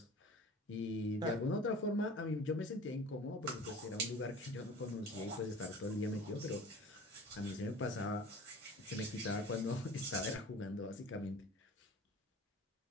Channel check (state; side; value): normal; both; correlation 0.41